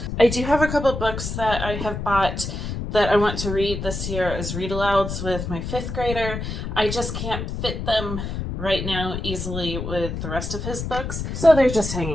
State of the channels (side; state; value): left; noise; rumble, 5 dB below the sound